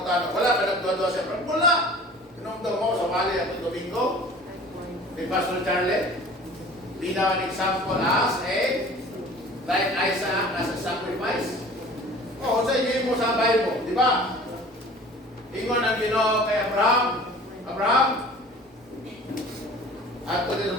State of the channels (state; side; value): normal; both; correlation 0.45